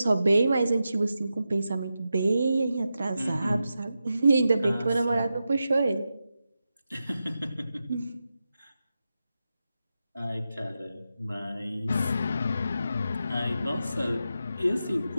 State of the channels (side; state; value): both; inverted; correlation -0.90